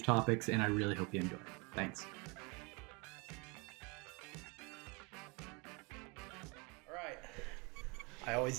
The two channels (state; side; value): quieter; left; 29.6 dB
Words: topics, and I really hope you enjoy it. Thanks. All right. I